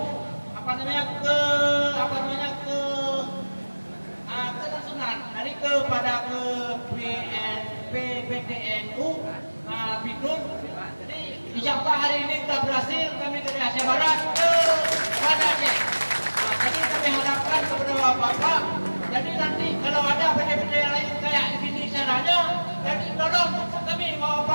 kelangsungan dari kepada ke PTNU Bidun. Jadi insyaallah hari ini kita berhasil kami dari Aceh Barat ke Banda Aceh. Jadi kami harapkan kepada bapak, jadi nanti kalau ada PT-PT yang lain kayak gini caranya, jadi tolong kami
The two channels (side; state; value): both; inverted; correlation -1.00